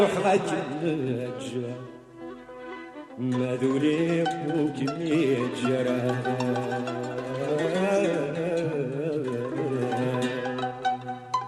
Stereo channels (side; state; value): both; identical; correlation 1.00